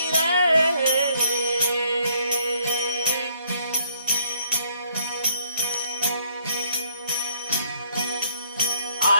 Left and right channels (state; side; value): inverted; both; correlation -0.66